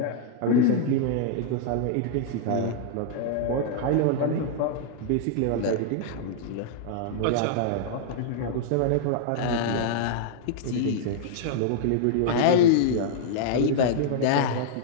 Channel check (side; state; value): both; different; correlation -0.01